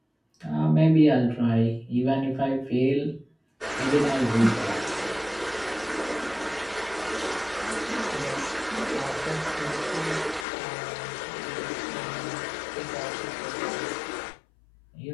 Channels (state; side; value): drops out; right; at 10.5 s